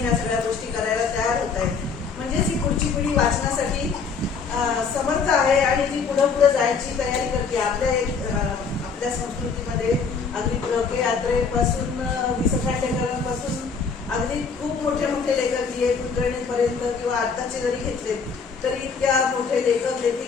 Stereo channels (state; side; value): quieter; right; 5.3 dB